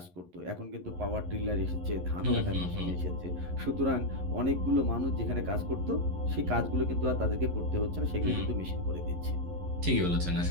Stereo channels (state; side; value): late; left; 11 ms